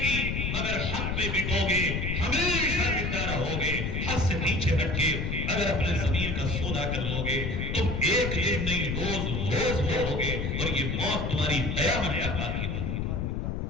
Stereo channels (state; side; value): noise; left; rumble, 1 dB below the sound